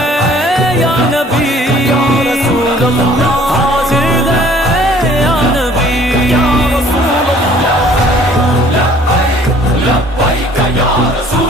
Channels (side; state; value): both; normal; correlation 0.55